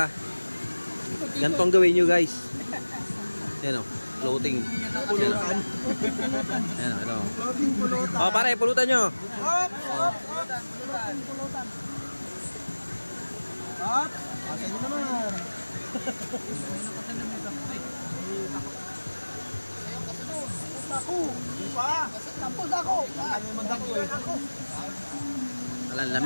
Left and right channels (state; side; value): inverted; both; correlation -1.00